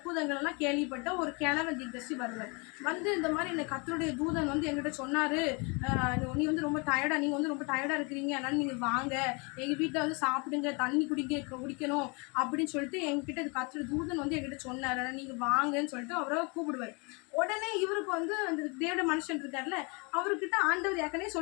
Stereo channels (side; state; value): right; quieter; 31.2 dB